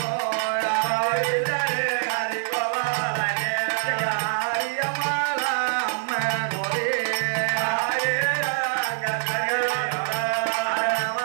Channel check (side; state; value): left; silent; 62 dB below the other